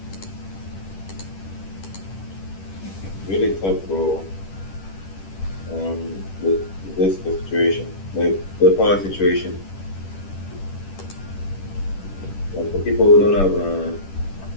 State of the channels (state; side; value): late; right; 10 ms